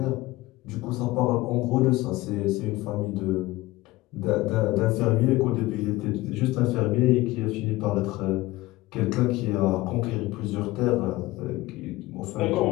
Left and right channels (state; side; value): quieter; right; 19.0 dB